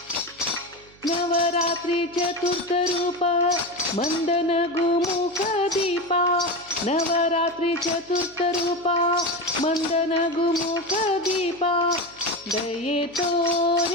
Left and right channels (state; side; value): noise; right; hum, 26 dB below the sound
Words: ನವರಾತ್ರಿ ಚತುರ್ಥ ರೂಪ ಮಂದನ ಗುಮುಖ ದೀಪ, ನವರಾತ್ರಿ ಚತುರ್ಥ ರೂಪ ಮಂದನ ಗುಮುಖ ದೀಪ, ದಯೆ